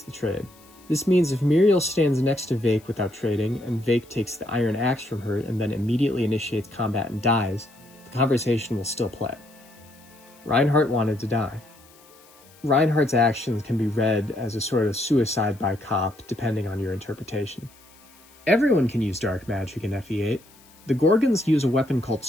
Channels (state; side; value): noise; left; hiss, 26 dB below the sound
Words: the trade. This means if Muriel stands next to Vake without trading, and Vake takes the iron axe from her and then immediately initiates combat and dies, the conversation will still play. Reinhardt wanted to die. Reinhardt's actions can be read as a sort of suicide by cop, depending on your interpretation. Everyone can use dark magic in FE8. The Gorgons use a weapon called